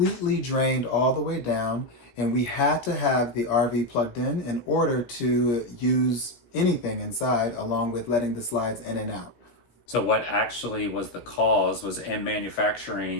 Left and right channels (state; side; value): late; right; 16 ms